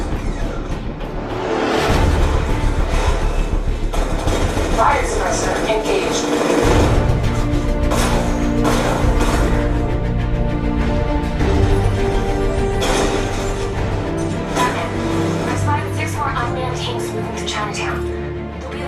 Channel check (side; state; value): both; identical; correlation 1.00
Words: Fire suppressor engaged. Batman, I spotted 6 more unmanned tanks moving to Chinatown. They'll be